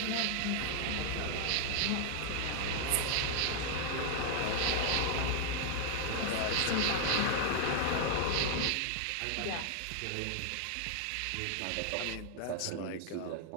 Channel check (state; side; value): different; both; correlation 0.00